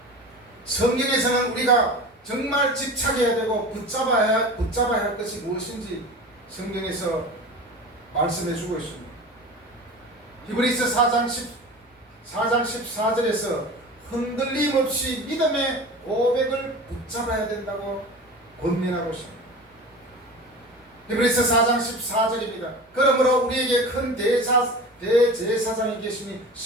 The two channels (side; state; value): both; normal; correlation 0.34